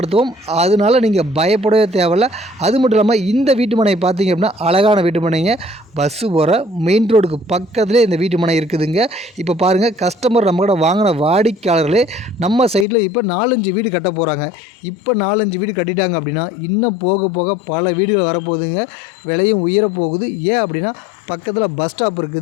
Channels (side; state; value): right; drops out; at 12.9 s